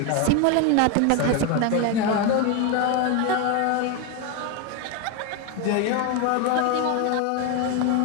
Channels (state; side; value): different; both; correlation 0.02